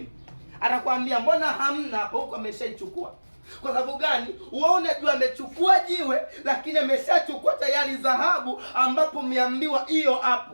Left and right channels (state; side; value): inverted; both; correlation -1.00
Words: atakwambia mbona hamna hapo, huko ameshaichukua. Kwa sababu gani? Wewe unajua amechukua jiwe, lakini ameshachukua tayari dhahabu ambapo umeambiwa hiyo